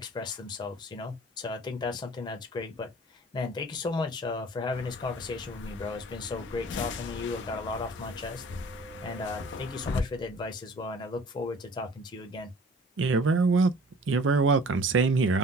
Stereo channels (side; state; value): both; normal; correlation 0.48